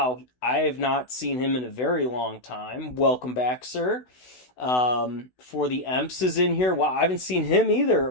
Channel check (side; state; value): right; late; 16 ms